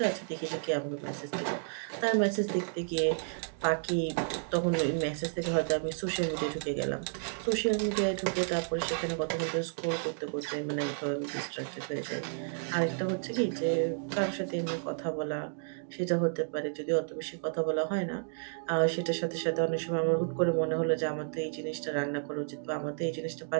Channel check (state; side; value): silent; left; digital silence